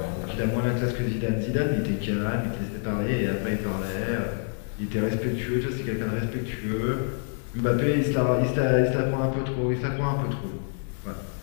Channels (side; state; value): right; silent; 56 dB below the other